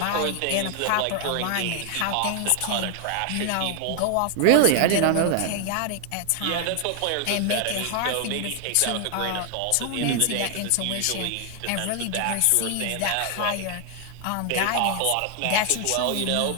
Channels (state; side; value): different; both; correlation 0.00